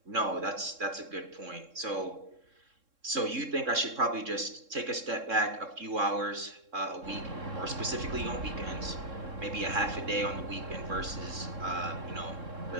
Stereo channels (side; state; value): left; late; 3.7 ms